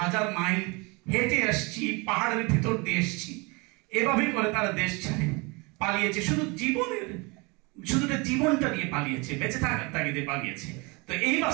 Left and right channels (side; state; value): left; quieter; 27.8 dB